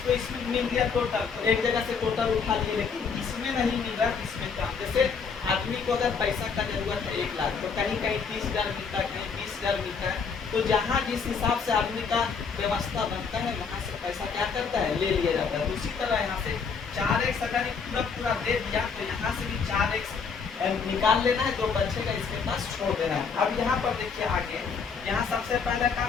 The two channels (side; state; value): right; quieter; 5.7 dB